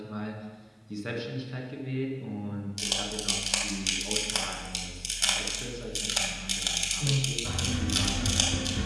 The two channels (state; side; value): identical; both; correlation 1.00